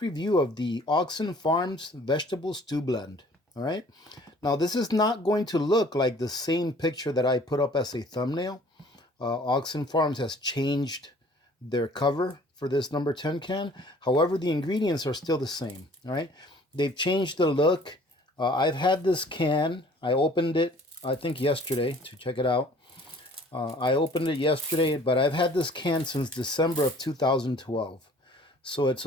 review of the Augason Farms Vegetable Stew Blend. All right. Now this is not going to look like the same picture that I put up as a thumbnail. Augason Farms has changed their cover for this number 10 can. However, the ingredients are still the same. All right. They've changed the look. I've had this can. I opened it, I think yesterday, to check it out. I opened it yesterday, but I've had this can since December of 2012. So it's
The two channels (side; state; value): both; normal; correlation 0.53